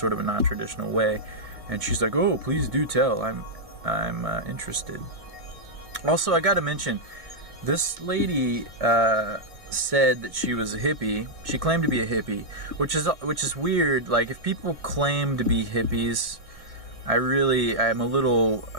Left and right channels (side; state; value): left; late; 2.0 ms